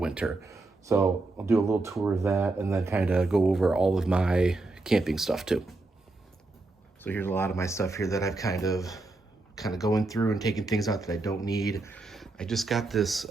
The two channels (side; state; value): left; quieter; 3.2 dB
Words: So I'll do a little tour of that and then kind of go over all of my camping stuff too. So here's a lot of my stuff here that I've kind of going through and taking things out that I don't need. I just got this